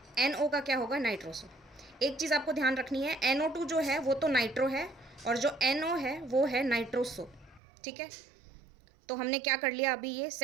NO का क्या होगा, नाइट्रोसो। एक चीज़ आपको ध्यान रखनी है, NO2 जो है वो तो नाइट्रो है, और जो NO है वो है नाइट्रोसो, ठीक है। तो हमने क्या कर लिया, अभी ये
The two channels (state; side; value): drops out; left; at 7.6 s